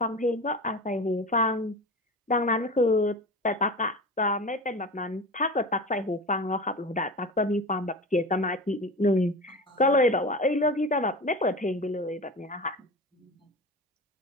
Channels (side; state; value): both; normal; correlation 0.30